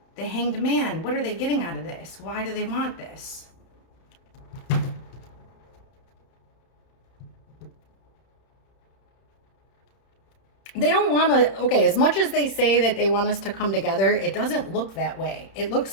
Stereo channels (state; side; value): late; right; 31 ms